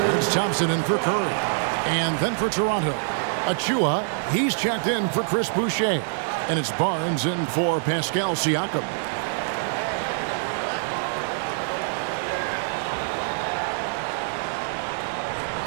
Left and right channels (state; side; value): silent; left; digital silence